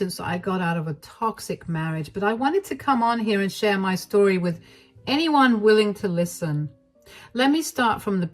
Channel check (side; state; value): both; identical; correlation 1.00